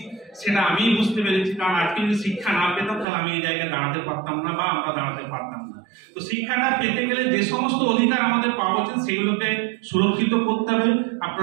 সেটা আমি বুঝতে পেরেছি, কারণ আজকে যদি শিক্ষা না পেতাম তাহলে আমি এই জায়গায় দাঁড়াতে পারতাম না বা আমরা দাঁড়াতে পারতাম না। তো শিক্ষাটা পেতে গেলে যে সমস্ত অধিকার আমাদের পাওয়া উচিত সেগুলোকে সুরক্ষিত করতে হবে।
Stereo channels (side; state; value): left; drops out; at 3.1 s